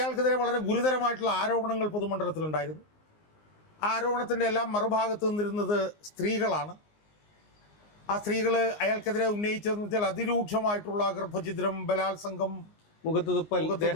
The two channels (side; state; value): right; late; 19 ms